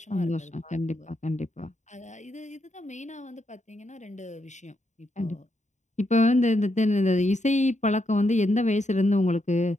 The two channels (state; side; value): late; right; 0.34 ms